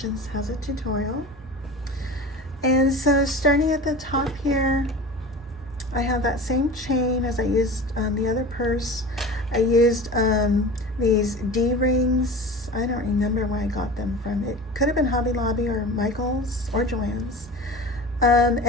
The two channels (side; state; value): both; normal; correlation 0.34